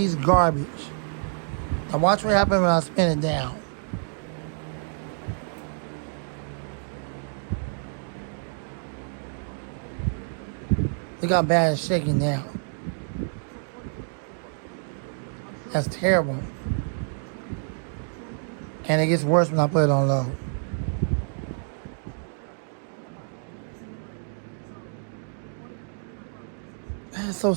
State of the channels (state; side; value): silent; left; digital silence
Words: garbage. Now watch what happens when I spin it down. Look how bad it's shaking down. That's terrible. And it gets worse when I put it on low. That's so